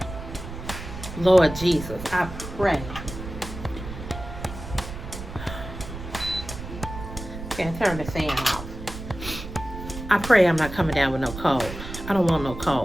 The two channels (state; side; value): noise; right; rumble, 10 dB below the sound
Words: Lord Jesus, I pray. Okay, turn the fan off. I pray I'm not coming down with no cold. I don't want no